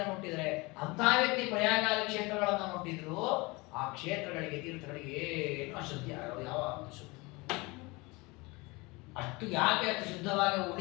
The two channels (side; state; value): right; quieter; 24.9 dB